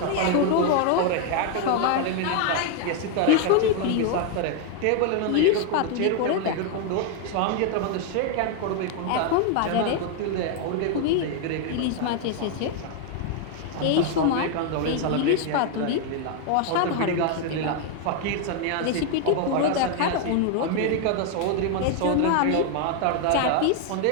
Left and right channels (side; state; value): both; different; correlation 0.01